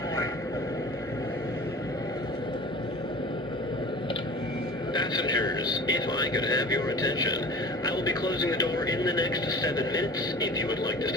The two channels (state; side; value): normal; both; correlation 0.40